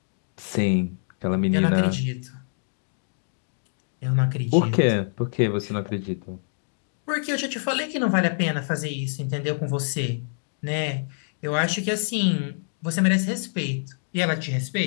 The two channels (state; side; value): silent; right; digital silence